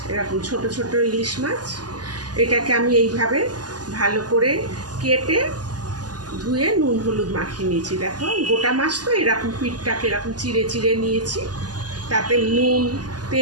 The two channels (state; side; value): late; left; 0.69 ms